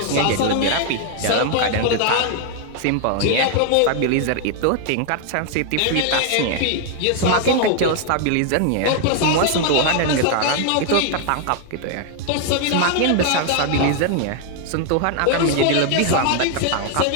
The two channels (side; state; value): both; different; correlation 0.00